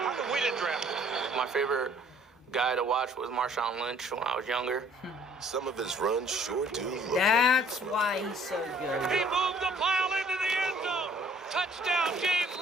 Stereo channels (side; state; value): both; normal; correlation 0.57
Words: come we didn't draft him? My favorite guy to watch was Marshawn Lynch when I was younger. Some of his runs sure do look That's why he's so good. He moved the pile into the end zone. Touchdown, James